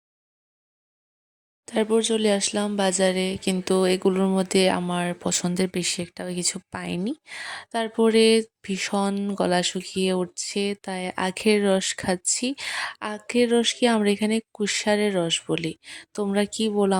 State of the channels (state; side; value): identical; both; correlation 1.00